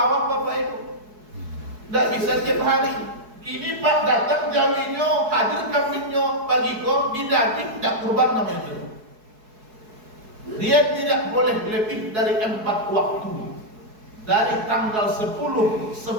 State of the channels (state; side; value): late; left; 4.7 ms